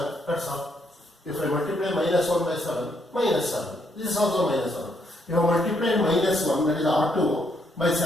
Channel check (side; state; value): both; normal; correlation 0.74